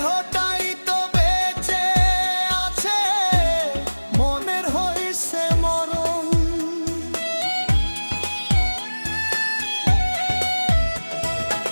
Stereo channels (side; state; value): both; inverted; correlation -1.00